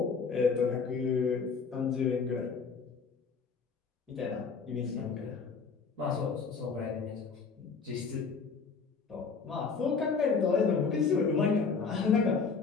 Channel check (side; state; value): right; quieter; 5.2 dB